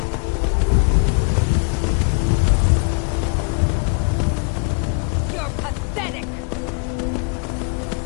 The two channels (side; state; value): right; quieter; 34.8 dB